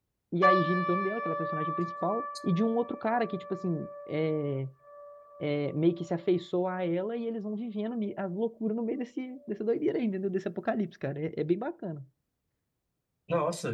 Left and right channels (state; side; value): identical; both; correlation 1.00